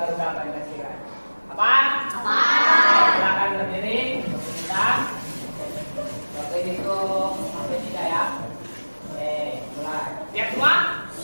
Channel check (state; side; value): inverted; both; correlation -1.00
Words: Pancasila. Apa? Apa? Silakan berdiri untuk kita. Oke, itu sampai 3 ya. Oke, mulai. Siap semua?